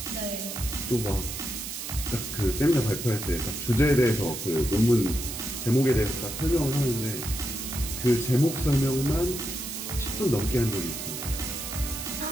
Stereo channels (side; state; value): right; noise; hiss, 7 dB below the sound